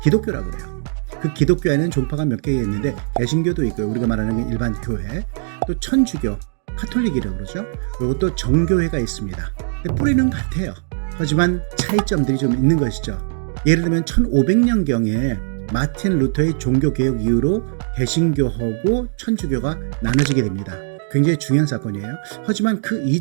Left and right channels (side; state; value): left; silent; digital silence